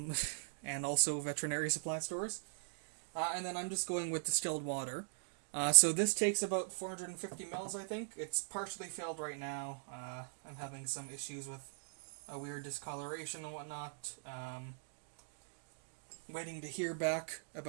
also veterinary supply stores. And then I'm just going with distilled water. So this takes about 450 mils, I think. It's partially filled right now. I'm having some issues with a weird discoloration and whatnot. Waiting to hear back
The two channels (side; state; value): left; silent; digital silence